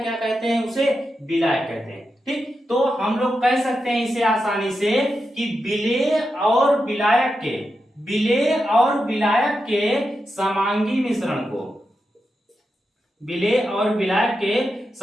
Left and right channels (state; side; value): normal; both; correlation 0.88